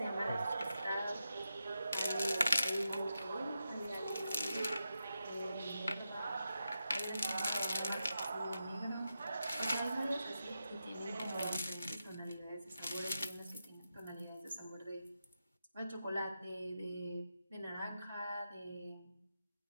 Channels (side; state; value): both; inverted; correlation -0.88